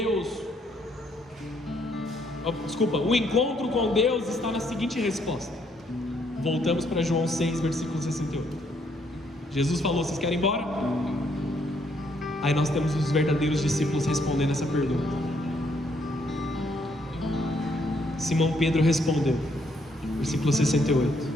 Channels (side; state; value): both; normal; correlation 0.71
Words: O encontro com Deus está na seguinte resposta. Voltamos para João 6, versículo 68. Jesus falou: vocês querem ir embora? Aí nós temos os verdadeiros discípulos respondendo essa pergunta. Simão Pedro respondeu, versículo 68: